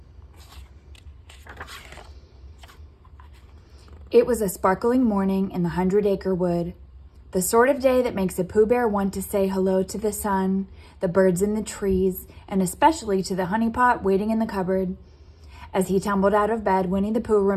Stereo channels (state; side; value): identical; both; correlation 1.00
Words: It was a sparkling morning in the 100-acre wood, the sort of day that makes a Pooh Bear want to say hello to the sun, the birds in the trees, and especially to the honey pot waiting in the cupboard. As he tumbled out of bed, Winnie the Pooh